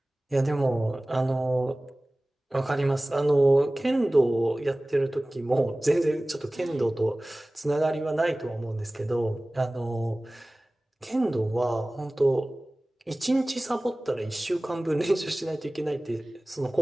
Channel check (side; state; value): both; normal; correlation 0.98